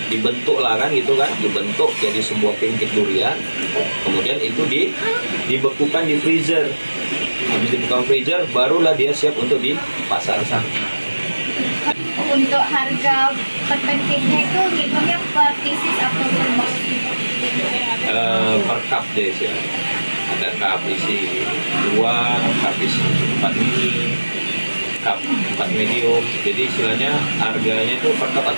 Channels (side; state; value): both; inverted; correlation -1.00